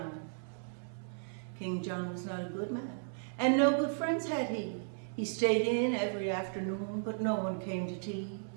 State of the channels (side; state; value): left; silent; digital silence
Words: King John was not a good man, and no good friends had he. He stayed in every afternoon, but no one came to tea.